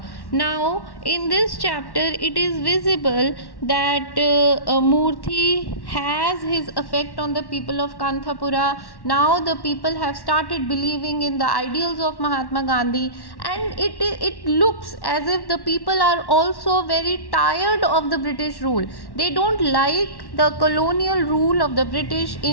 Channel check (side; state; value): right; late; 1.1 ms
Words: Now in this chapter it is visible that Murthy has his effect on the people of Kanthapura. Now the people have started believing in the ideals of Mahatma Gandhi, and it looks as if the people are also very tired of the British rule. They don't like the colonial rule of the British